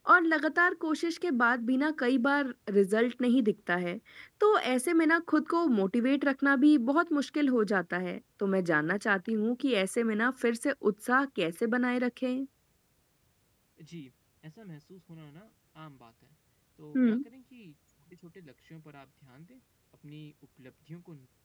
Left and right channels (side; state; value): both; identical; correlation 1.00